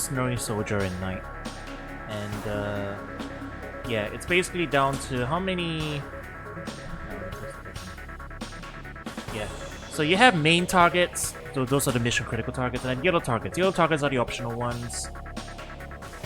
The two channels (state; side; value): identical; both; correlation 1.00